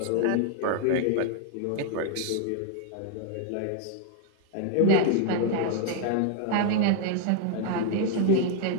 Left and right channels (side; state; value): both; different; correlation 0.00